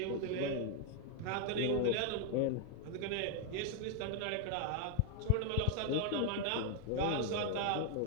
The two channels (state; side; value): different; both; correlation 0.00